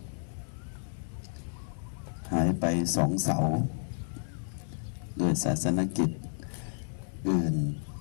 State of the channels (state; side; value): silent; right; digital silence